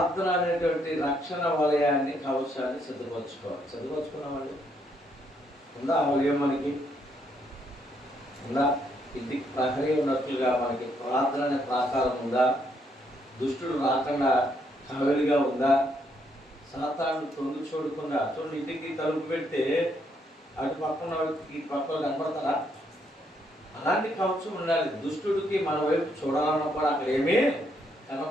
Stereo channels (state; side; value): normal; both; correlation 0.73